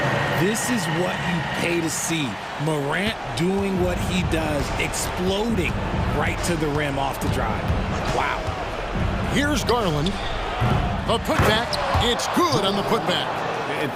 This is what you pay to see. Morant doing what he does, exploding right to the rim off the drive. Wow. Here's Garland. A putback. It's good on the putback. And,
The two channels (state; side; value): identical; both; correlation 1.00